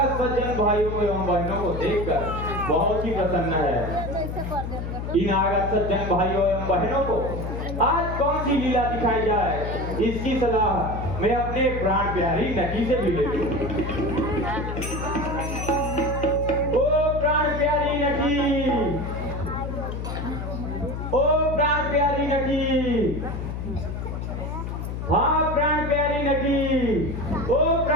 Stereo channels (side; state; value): left; noise; hum, 5 dB below the sound